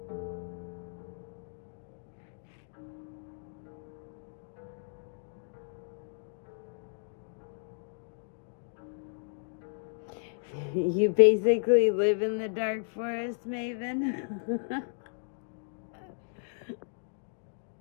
You basically live in the dark forest, Maven.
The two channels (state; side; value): silent; right; digital silence